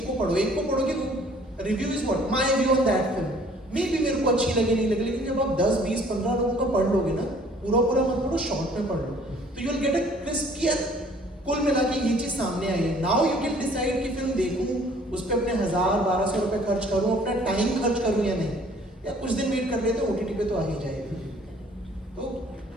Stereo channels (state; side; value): normal; both; correlation 0.56